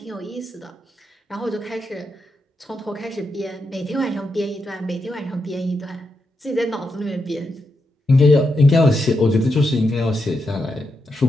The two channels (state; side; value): normal; both; correlation 0.84